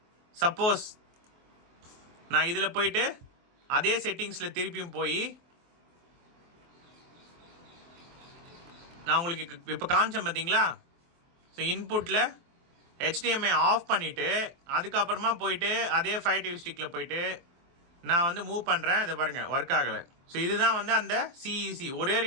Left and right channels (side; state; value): left; late; 23 ms